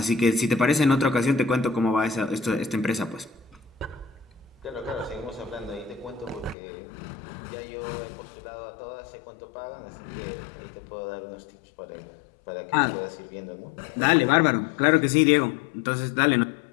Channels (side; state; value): right; drops out; at 6.6 s